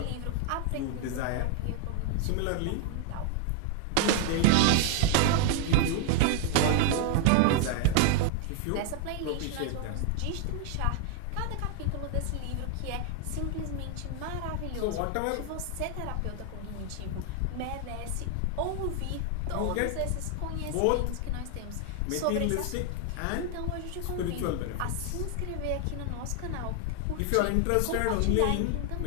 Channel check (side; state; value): both; different; correlation 0.00